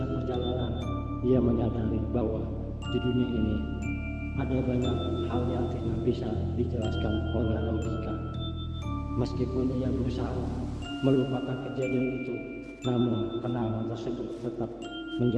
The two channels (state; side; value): identical; both; correlation 1.00